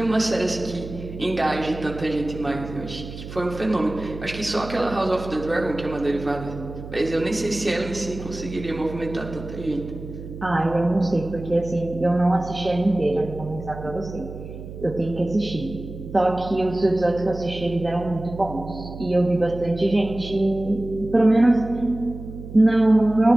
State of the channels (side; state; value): right; noise; hum, 12 dB below the sound